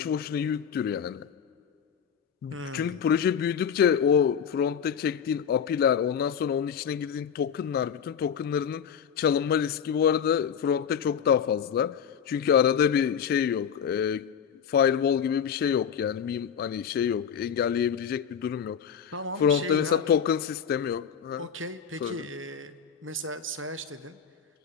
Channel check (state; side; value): quieter; right; 7.6 dB